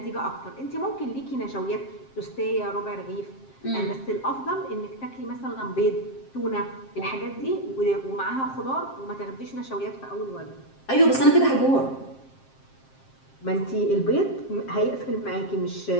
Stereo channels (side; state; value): right; late; 7.5 ms